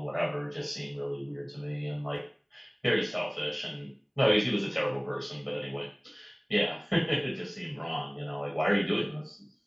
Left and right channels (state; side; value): identical; both; correlation 1.00